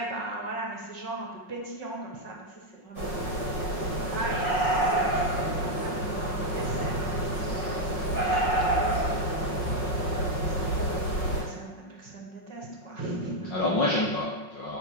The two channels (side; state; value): right; late; 5.4 ms